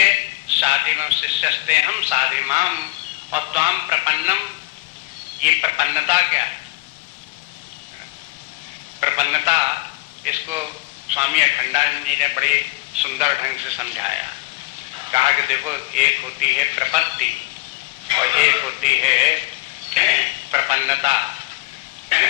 साधिमम शिष्यस्ते हम साधिमाम और त्वाम प्रपन्नम। ये प्रपन्नता क्या है? प्रपन्नता, इसको स्वामी अखंडानंद जी ने बड़े सुंदर ढंग से समझाया। कहा कि देखो एक होती है प्रपत्ति और एक होती है प्रपन्नता।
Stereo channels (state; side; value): quieter; right; 22.6 dB